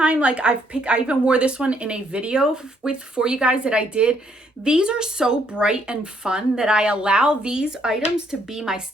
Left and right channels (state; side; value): normal; both; correlation 0.70